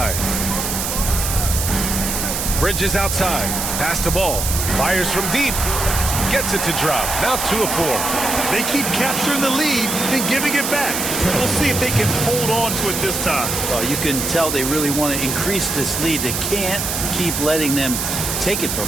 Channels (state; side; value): noise; right; hiss, 2 dB below the sound